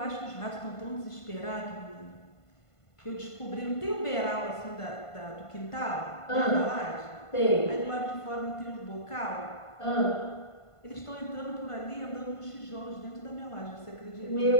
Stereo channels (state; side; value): late; right; 1.5 ms